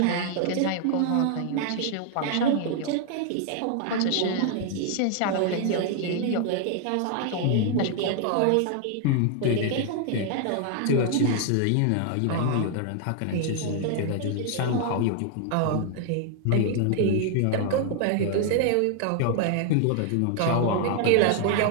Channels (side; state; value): both; different; correlation 0.00